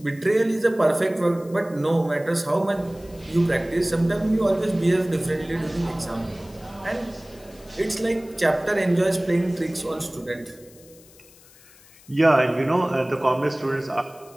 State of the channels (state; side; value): noise; left; hiss, 25 dB below the sound